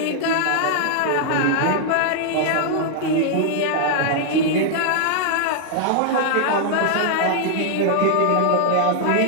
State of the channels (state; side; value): different; both; correlation -0.01